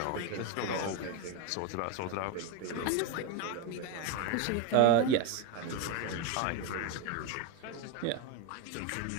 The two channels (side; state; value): both; different; correlation 0.03